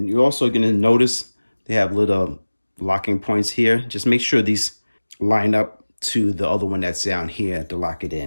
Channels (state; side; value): inverted; both; correlation -1.00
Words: you're also gonna notice they have little locking points here. Just make sure these line up to the other one that's down here to lock it